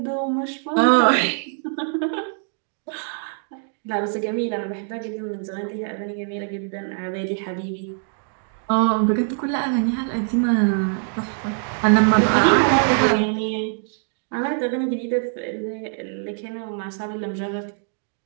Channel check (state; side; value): silent; left; 59 dB below the other